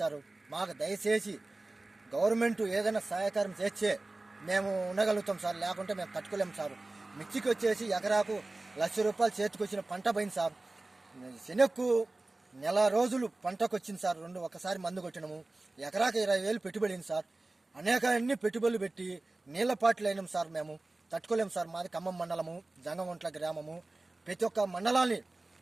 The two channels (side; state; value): left; quieter; 3.0 dB